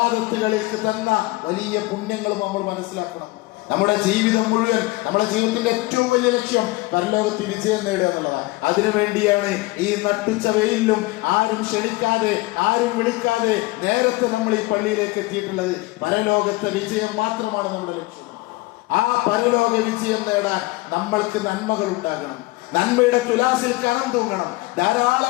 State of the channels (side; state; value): right; quieter; 21.4 dB